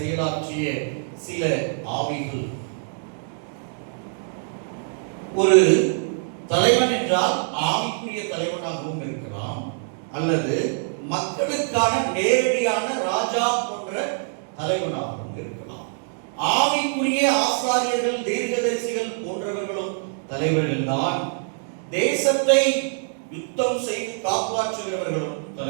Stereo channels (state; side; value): silent; left; 62 dB below the other